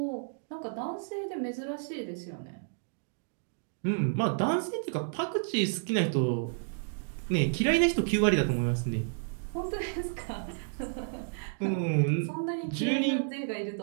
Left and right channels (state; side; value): silent; left; digital silence